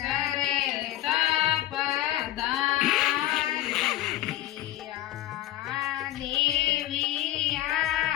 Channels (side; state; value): right; quieter; 14.2 dB